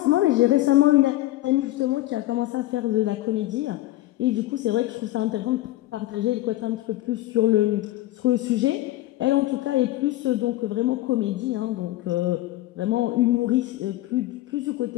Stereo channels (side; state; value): right; quieter; 16.2 dB